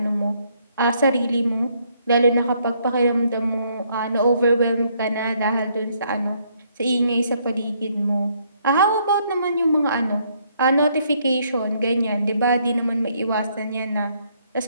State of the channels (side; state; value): both; inverted; correlation -0.69